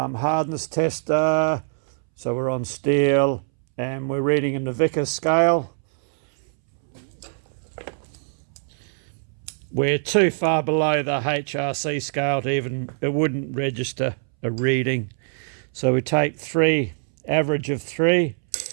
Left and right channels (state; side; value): silent; left; 63 dB below the other